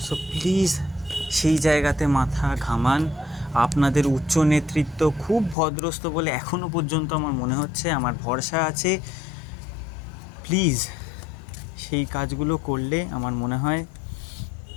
সো প্লিজ সেই জায়গাতে মাথা ঘামান। আপনাদের উচ্চ নেতৃত্ব খুব ভদ্রস্থ বলে এখনও পর্যন্ত আমার মনে হচ্ছে, আমার ভরসা আছে। প্লিজ সেই কাজগুলো করলে আমার মনে হয়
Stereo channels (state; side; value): drops out; right; at 5.6 s